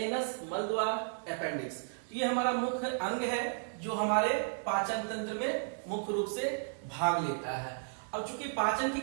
मलद्वार, अपेंडिक्स। तो ये हमारा मुख्य अंग है जो हमारे पाचन तंत्र में मुख्य रूप से भाग लेता है। अब चूंकि पाचन की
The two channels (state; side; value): silent; left; digital silence